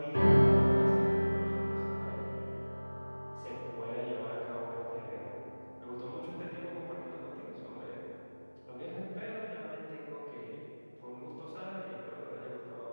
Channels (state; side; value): inverted; both; correlation -1.00